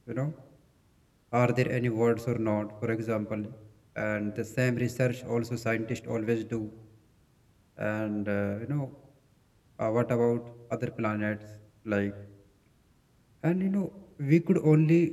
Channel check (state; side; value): identical; both; correlation 1.00